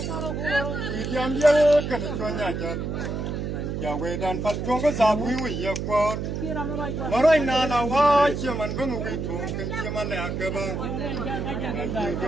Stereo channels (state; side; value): noise; right; hum, 3 dB below the sound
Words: Ya we dan fal chong ko sa bui wi ya ko maroi na na wa chi man ko wi thong ken chi man la ka ba ji